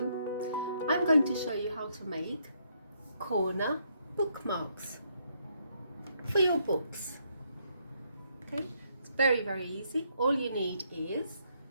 I'm going to show you how to make corner bookmarks for your books. Okay, it's very easy. All you need is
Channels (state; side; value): inverted; both; correlation -0.73